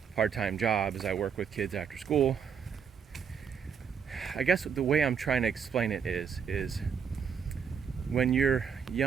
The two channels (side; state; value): left; quieter; 6.9 dB